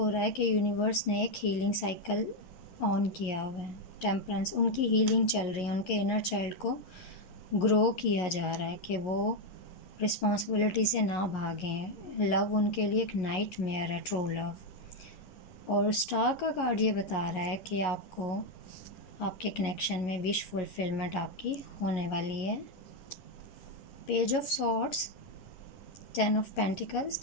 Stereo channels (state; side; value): late; right; 11 ms